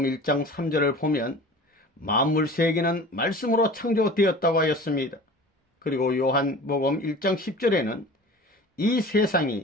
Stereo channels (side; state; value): both; normal; correlation 0.40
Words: 1장 3절을 보면 만물 세계는 말씀으로 창조되었다고 하였습니다. 그리고 요한복음 1장 10절에는 이